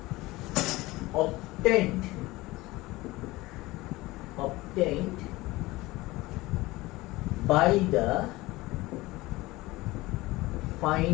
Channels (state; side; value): quieter; right; 20.0 dB